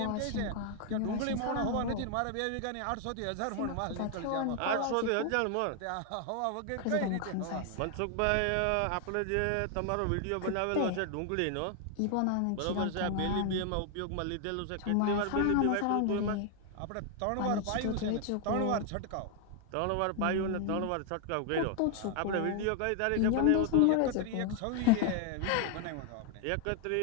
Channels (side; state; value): both; different; correlation 0.00